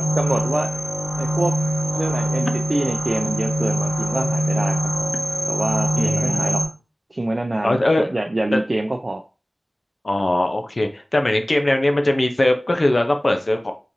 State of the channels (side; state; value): both; normal; correlation 0.97